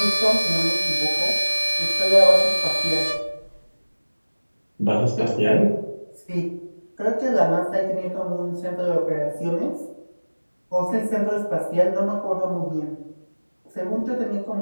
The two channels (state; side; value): inverted; both; correlation -1.00